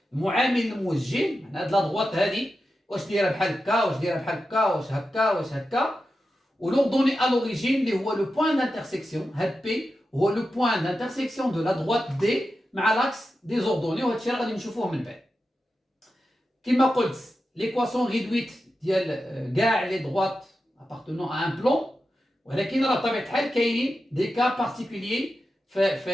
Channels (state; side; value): normal; both; correlation 0.91